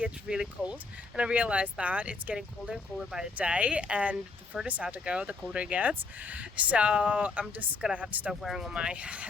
really cold, and I realized that it's getting colder and colder by the day, and the further south I go, the colder it gets. So I'm just gonna have to start wearing all my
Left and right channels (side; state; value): right; quieter; 4.0 dB